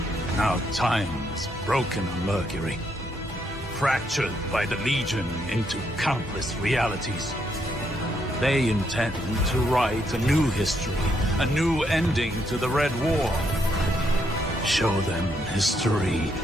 Now time is broken on Mercury, fractured by the Legion into countless realities. They intend to write a new history, a new ending to the Red War. Show them history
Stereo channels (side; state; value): both; normal; correlation 0.75